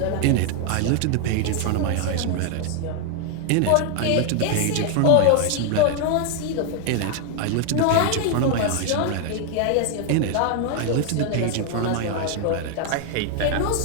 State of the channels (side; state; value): both; different; correlation 0.00